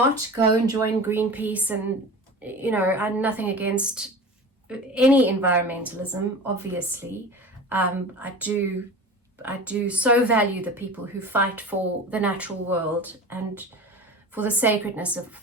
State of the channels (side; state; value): both; normal; correlation 0.34